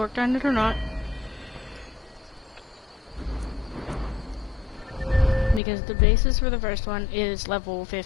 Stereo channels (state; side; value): drops out; right; at 5.6 s